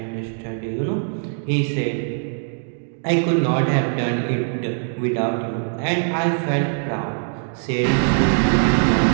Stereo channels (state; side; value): silent; left; digital silence